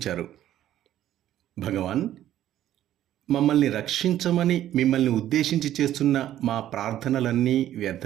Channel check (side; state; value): left; quieter; 12.3 dB